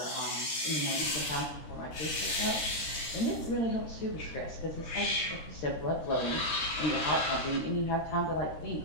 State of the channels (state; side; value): late; right; 14 ms